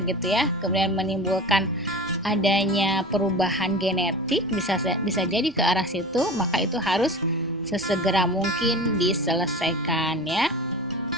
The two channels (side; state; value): both; normal; correlation 0.33